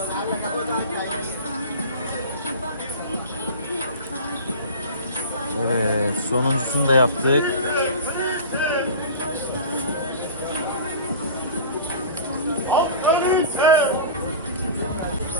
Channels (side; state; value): both; inverted; correlation -0.35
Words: Evet, sonuncusunu da yaptık.